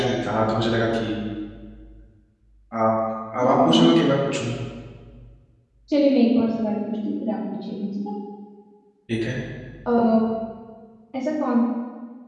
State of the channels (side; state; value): both; identical; correlation 1.00